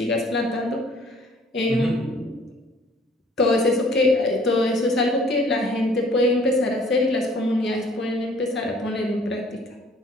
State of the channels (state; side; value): normal; both; correlation 0.56